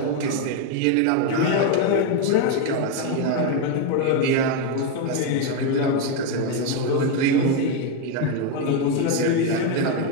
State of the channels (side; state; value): both; different; correlation 0.02